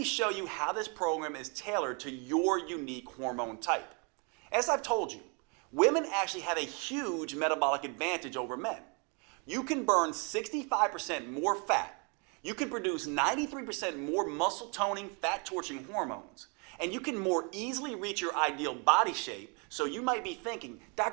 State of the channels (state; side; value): quieter; left; 34.6 dB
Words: show you how this program is tailored to your unique hormone type. As I've told you, women actually have a huge metabolic advantage over men. You can burn 65% more fat. You can produce 93% more muscle toning, fat torching hormones. And you can more easily reach your ideal body shape. So you might be thinking,